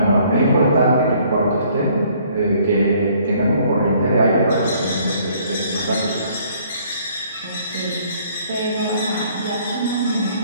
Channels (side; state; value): both; inverted; correlation -0.61